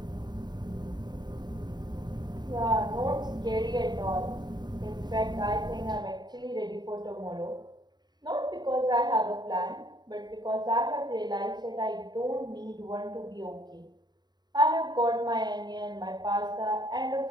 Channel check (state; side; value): late; left; 0.20 ms